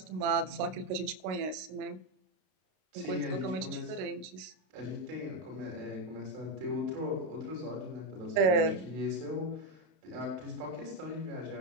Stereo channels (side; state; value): left; late; 32 ms